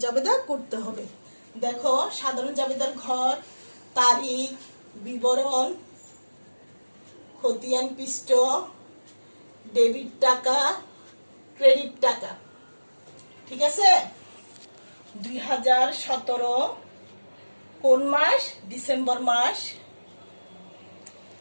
জাবেদা করতে হবে। দেখো সাধারণ জাবেদার ঘর, তারিখ, বিবরণ, খতিয়ান পৃষ্ঠ, ডেবিট টাকা, ক্রেডিট টাকা। ঠিক আছে? 2017 কোন মাস? ডিসেম্বর মাস।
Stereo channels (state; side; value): inverted; both; correlation -1.00